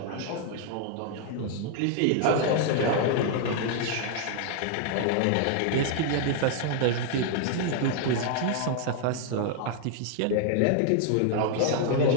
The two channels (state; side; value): different; both; correlation 0.00